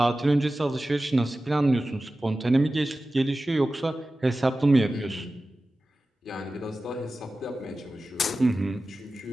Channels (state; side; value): normal; both; correlation 0.95